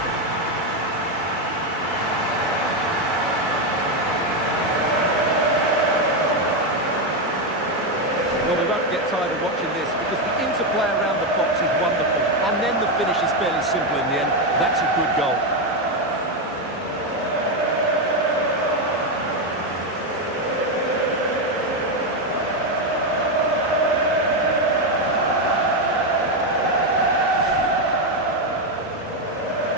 excited watching this because the interplay around the box is wonderful. And then the finish is fairly simple in the end. That's a good goal.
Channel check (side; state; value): both; normal; correlation 0.07